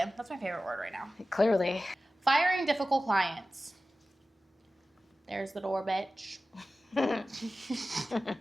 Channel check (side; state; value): both; normal; correlation 0.95